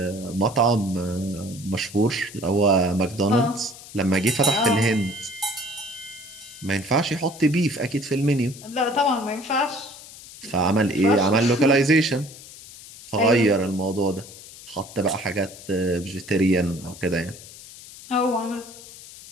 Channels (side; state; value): left; noise; hiss, 17 dB below the sound